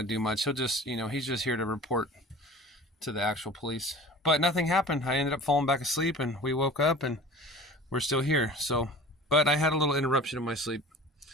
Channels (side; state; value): both; normal; correlation 0.41